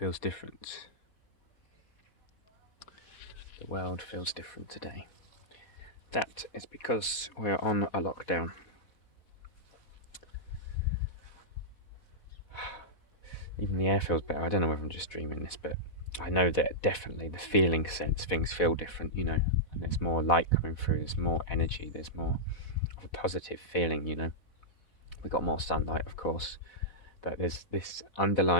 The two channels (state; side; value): late; right; 4.1 ms